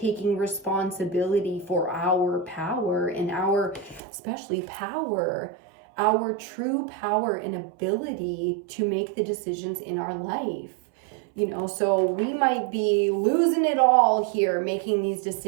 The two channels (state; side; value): drops out; left; at 4.0 s